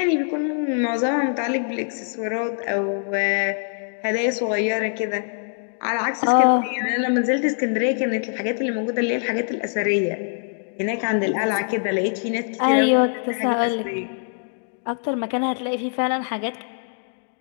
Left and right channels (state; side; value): silent; right; digital silence